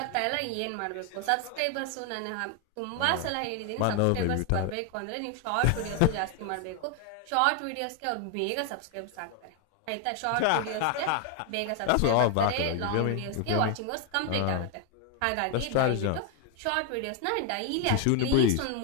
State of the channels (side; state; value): both; different; correlation 0.01